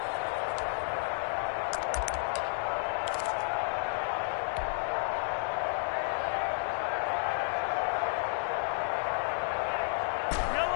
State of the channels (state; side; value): silent; right; digital silence